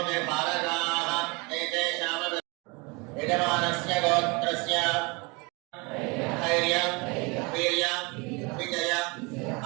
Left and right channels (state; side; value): quieter; left; 28.2 dB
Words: మే భారతాః ఏతేషాం యజమానస్య గోత్రస్య ధైర్య వీర్య విజయ